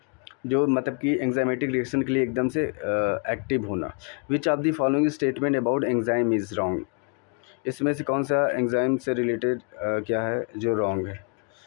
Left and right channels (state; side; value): quieter; right; 35.6 dB